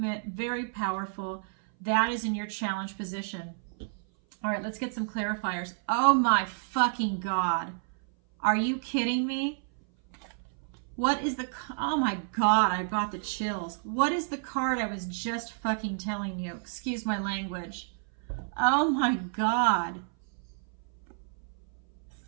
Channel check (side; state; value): left; silent; 57 dB below the other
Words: very powerful. That is in your challenge position. All right, let's get some clarifiers. Oh my fucking God. Are you kidding me? What is the, oh my God, I got the chills. What is the card I was just fucking telling you? Excuse my language. Oh my God.